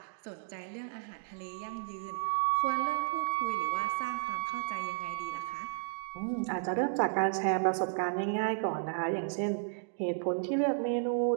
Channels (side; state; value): left; silent; digital silence